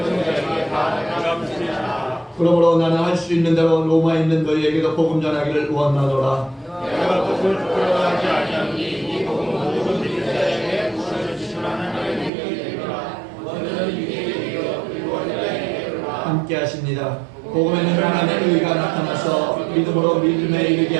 그러므로 나는 할 수 있는 대로 로마에 있는 너희에게도 복음 전하기를 원하노라. 내가 복음을 부끄러워하지 아니하니 이 복음은 모든 믿는 자에게 부활을 주시는 하나님의 능력이 되리라. 너희는 유대인에게 그리고 헬라인에게 함께 하십니다. 복음에는 하나님의 의가 나타나서 믿음으로 믿음에 이르게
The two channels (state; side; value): drops out; left; at 12.3 s